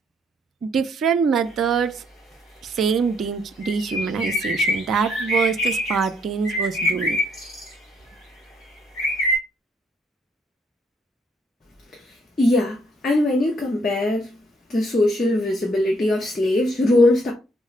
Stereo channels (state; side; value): normal; both; correlation 0.69